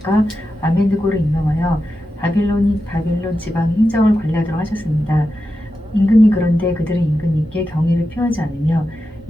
아벤느고를 임명하여 바빌론 지방 행정을 관리하도록 하셨습니다. 임금님 그런데 그들은 임금님께 경의를 표하지 않으며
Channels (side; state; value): both; normal; correlation 0.90